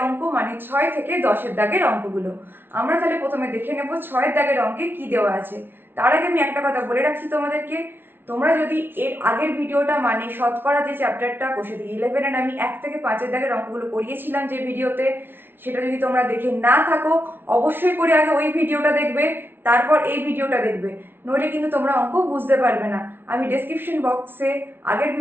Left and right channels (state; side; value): late; left; 0.11 ms